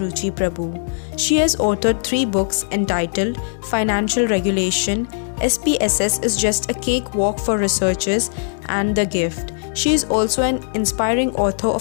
Ruchi Prabhu. She has authored 3 books entitled Financial Regulation, SPSS is Just a Cakewalk for Researchers, and The Gift. She is also an inspiring author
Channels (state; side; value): silent; right; digital silence